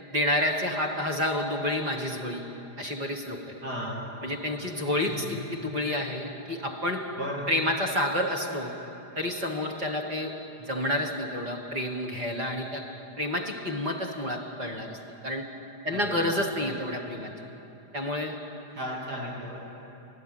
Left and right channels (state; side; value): late; left; 4.9 ms